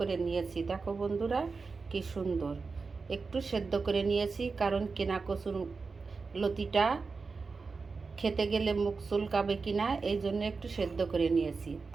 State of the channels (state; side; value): quieter; left; 4.5 dB